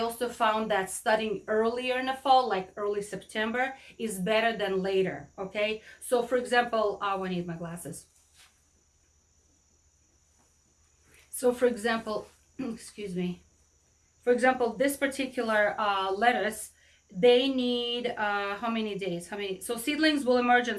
found that studying earlier in the fall, like early September, is better than later, okay? So for example, I need my glasses. So for example, excuse me. For example, this particular lettuce, they need how many days? So seedlings will emerge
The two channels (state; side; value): identical; both; correlation 1.00